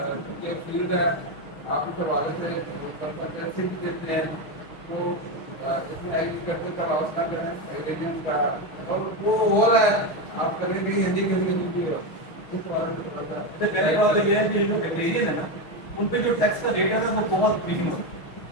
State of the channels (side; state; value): right; late; 6.7 ms